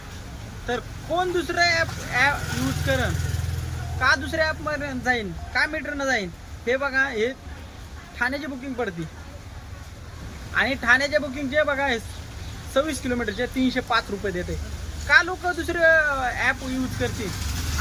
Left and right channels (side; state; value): both; identical; correlation 1.00